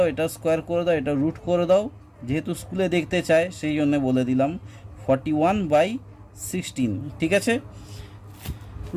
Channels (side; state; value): both; identical; correlation 1.00